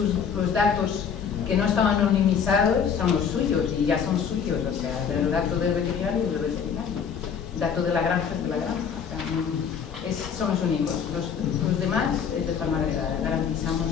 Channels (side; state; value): right; quieter; 7.1 dB